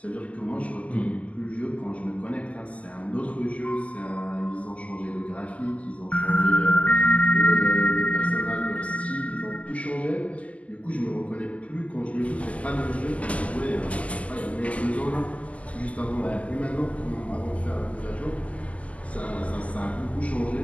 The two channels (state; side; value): late; right; 0.069 ms